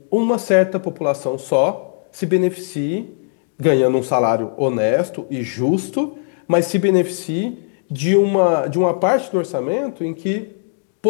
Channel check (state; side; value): silent; right; digital silence